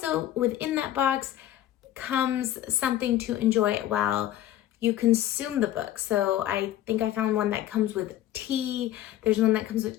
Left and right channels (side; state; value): right; quieter; 12.7 dB